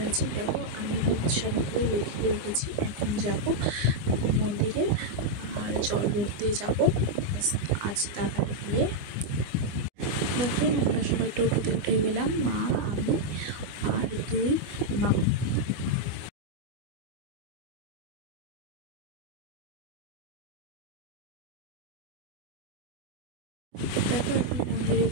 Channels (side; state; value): left; late; 24 ms